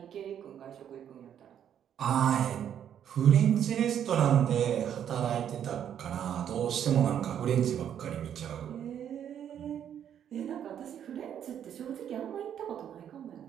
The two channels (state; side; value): quieter; left; 9.4 dB